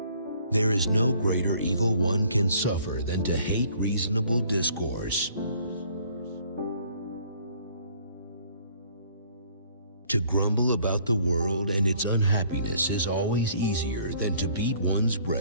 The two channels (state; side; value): inverted; both; correlation -0.59